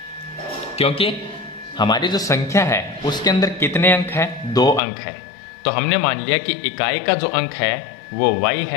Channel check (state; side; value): drops out; right; at 4.8 s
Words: क्योंकि हमारी जो संख्या है उसके अंदर कितने अंक है? 2 अंक है। तो हमने मान लिया कि इकाई का जो अंक है वो y